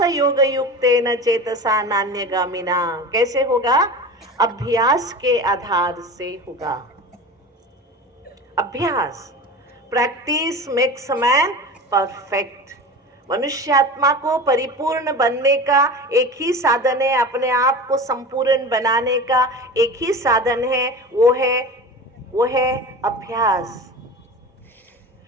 योग युक्तेन चेतसा नान्यगामिना। कैसे होगा? अभ्यास के आधार से होगा। अभ्यास, प्रैक्टिस मेक्स मैन परफेक्ट। मनुष्यात्मा को परिपूर्ण बनने का एक ही साधन है, अपने आप को संपूर्ण बनाने का एक ही साधन है, वो है अभ्यास।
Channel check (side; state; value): both; normal; correlation 0.32